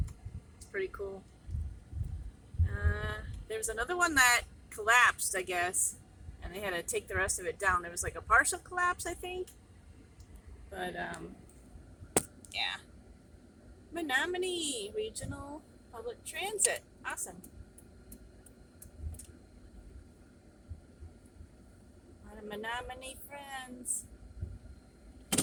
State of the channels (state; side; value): identical; both; correlation 1.00